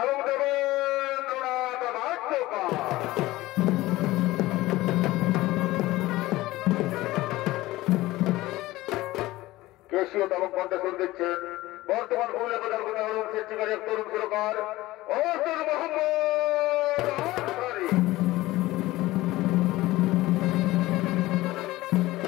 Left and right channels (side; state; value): right; quieter; 18.0 dB